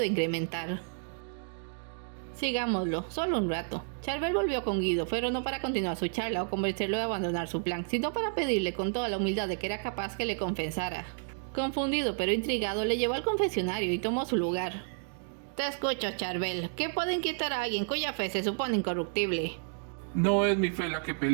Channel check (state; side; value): silent; left; digital silence